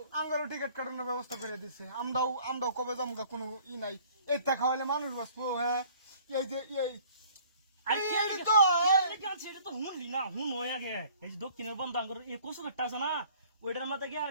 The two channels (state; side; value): inverted; both; correlation -0.54